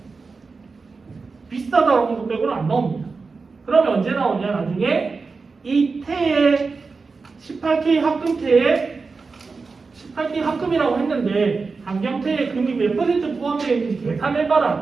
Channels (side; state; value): left; quieter; 4.4 dB